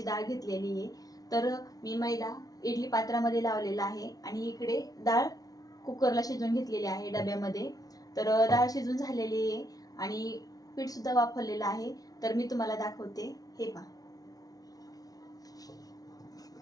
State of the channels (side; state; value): right; late; 0.18 ms